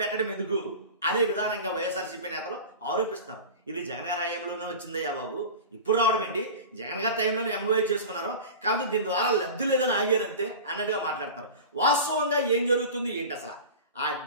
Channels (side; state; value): both; inverted; correlation -0.32